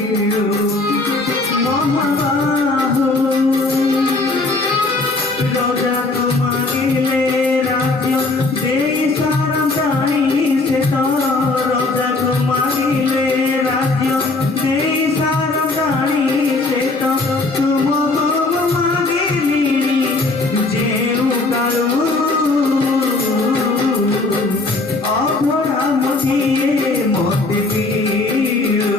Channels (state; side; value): quieter; right; 3.3 dB